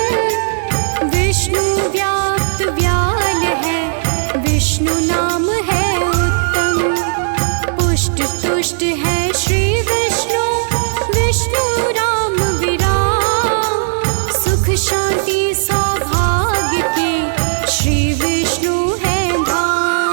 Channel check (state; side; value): silent; left; 59 dB below the other